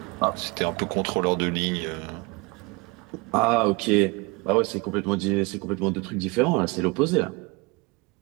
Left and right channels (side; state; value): left; quieter; 26.8 dB